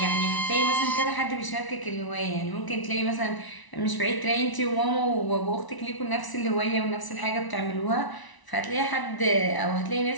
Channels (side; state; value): right; late; 1.0 ms